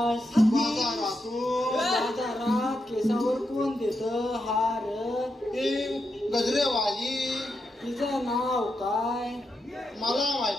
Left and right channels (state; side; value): normal; both; correlation 0.85